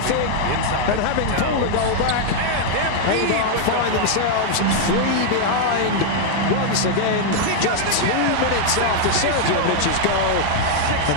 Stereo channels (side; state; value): both; different; correlation -0.01